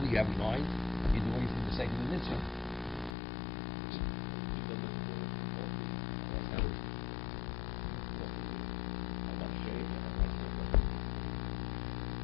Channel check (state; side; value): drops out; right; at 3.2 s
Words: you have in mind, you're doing it for the sake of the mitzvah. You build it for both reasons. I want shade and I want sukkah.